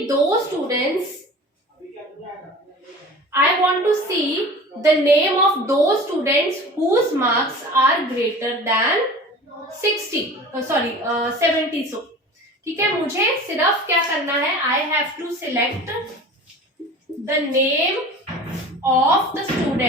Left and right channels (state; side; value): normal; both; correlation 0.39